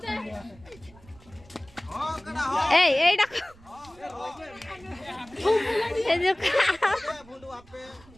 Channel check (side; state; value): right; noise; rumble, 25 dB below the sound